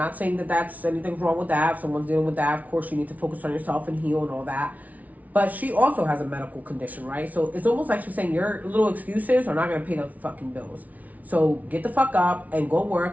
saying that that's anything wrong with that. If someone's dealing with that, of course you need to focus on yourself and heal and all that. But she also has a medical condition, right? So it's almost like she's saying your little excuses are not going to pay the fucking bills. So get the fuck up and go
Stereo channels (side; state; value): left; late; 0.072 ms